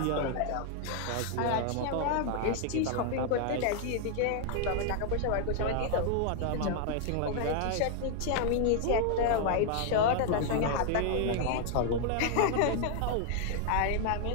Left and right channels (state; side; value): different; both; correlation 0.00